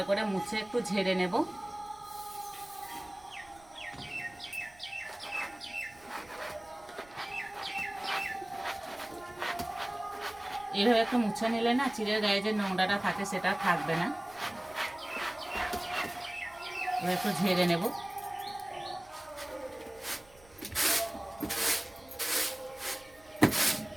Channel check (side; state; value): right; noise; rumble, 27 dB below the sound